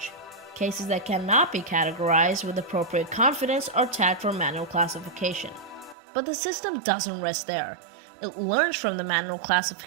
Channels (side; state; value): left; drops out; at 6.0 s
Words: Cases that cannot be categorized with appropriate confidence are tagged for manual classification. But the system doesn't rest there. It learns from the manual